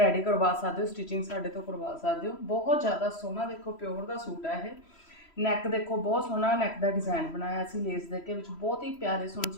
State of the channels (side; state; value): right; late; 3.1 ms